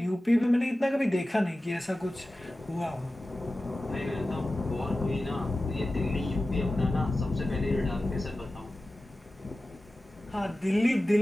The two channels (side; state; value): both; normal; correlation 0.95